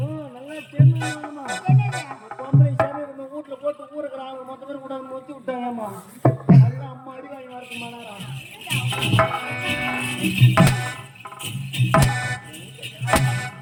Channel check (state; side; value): identical; both; correlation 1.00